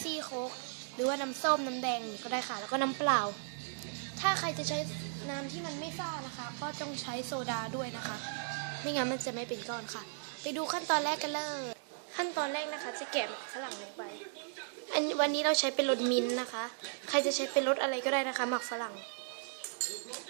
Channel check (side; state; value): left; silent; digital silence